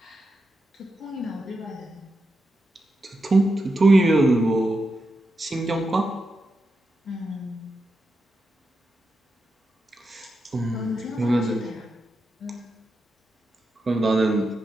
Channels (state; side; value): normal; both; correlation 0.88